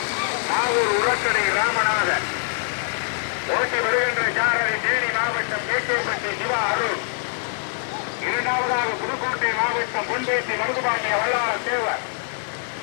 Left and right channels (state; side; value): silent; right; 63 dB below the other